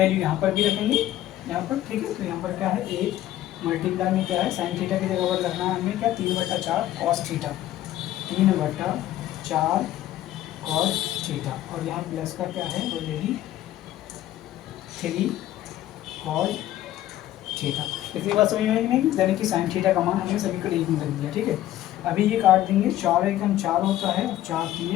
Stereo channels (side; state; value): right; quieter; 13.6 dB